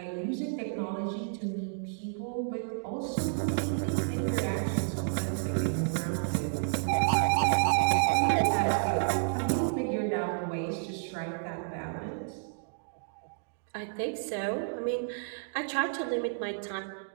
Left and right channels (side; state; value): left; silent; digital silence